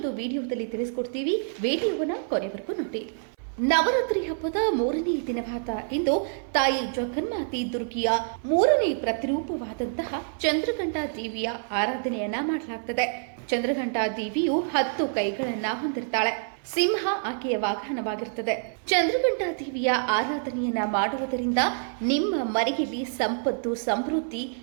ವಿಡಿಯೋದಲ್ಲಿ ತಿಳಿಸ್ಕೊಡ್ತೀವಿ. ವಿಡಿಯೋವನ್ನ ಕೊನೆವರೆಗೂ ನೋಡಿ. ನವರಾತ್ರಿ ಹಬ್ಬದ ಮೂರನೇ ದಿನವಾದ ಇಂದು ತಾಯಿ ಜಗನ್ಮಾತೆ ದುರ್ಗಿಯ ಮೂರನೇ ಪ್ರತಿರೂಪವಾದಂತಹ ಚಂದ್ರಘಂಟಾ ದೇವಿಯ ಆರಾಧನೆಯನ್ನ ಮಾಡಲಾಗ್ತದೆ. ಚಂದ್ರಘಂಟಾ ದೇವಿಯು 10 ಕೈಗಳನ್ನ ಹೊಂದಿರ್ತಾಳೆ. ಸಿಂಹ ಆಕೆಯ ವಾಹನವಾಗಿರುತ್ತದೆ. ಚಂದ್ರಘಂಟಾ ದೇವಿಯ ಆರಾಧನೆಯನ್ನ ಮಾಡುವುದರಿಂದ ನಿಮ್ಮ ಮನೆಯಲ್ಲಿ ಸಂಪತ್ತು ಸಮೃದ್ಧಿ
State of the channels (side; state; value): left; silent; 58 dB below the other